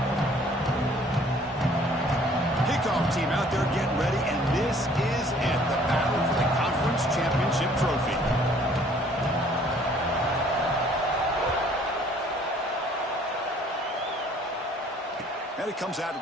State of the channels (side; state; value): both; normal; correlation 0.57